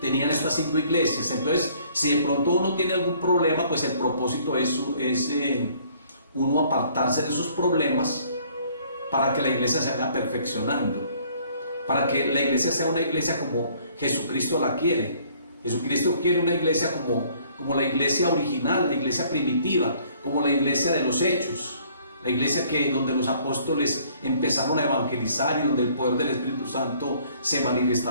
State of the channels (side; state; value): both; inverted; correlation -0.59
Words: estas 5 iglesias. Entonces, si de pronto uno tiene algún problema, pues el propósito es uno apartarse de esos problemas, para que la iglesia se vaya perfeccionando, para que la iglesia sea una iglesia como Jesucristo la quiere. Jesucristo quiere una iglesia como la iglesia original, la iglesia primitiva, como la iglesia de los Hechos, la iglesia donde los apóstoles empezaron a evangelizar, y donde el poder del Espíritu Santo se